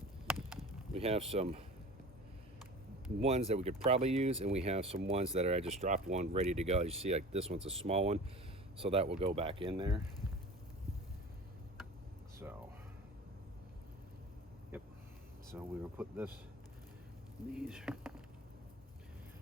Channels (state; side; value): normal; both; correlation 0.38